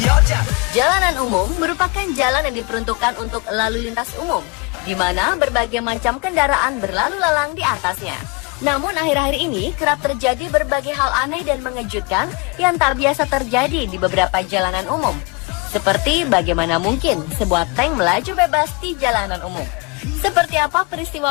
여자. Jalanan umum merupakan jalan yang diperuntukkan untuk lalu lintas umum, di mana berbagai macam kendaraan berlalu lalang di atasnya. Namun akhir-akhir ini kerap terjadi berbagai hal aneh dan mengejutkan yang tak biasa terjadi di beberapa jalanan umum. Seperti bagaimana mungkin sebuah tank melaju bebas di jalanan umum. Seperti apa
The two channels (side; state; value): right; quieter; 29.6 dB